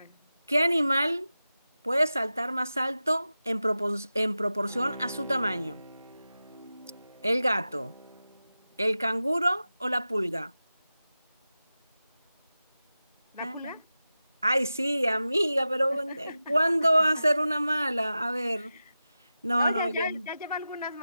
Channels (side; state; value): both; inverted; correlation -0.94